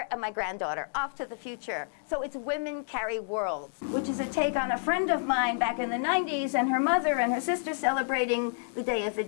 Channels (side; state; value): right; silent; digital silence